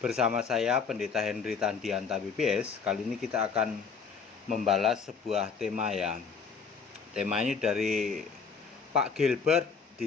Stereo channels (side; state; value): right; quieter; 5.7 dB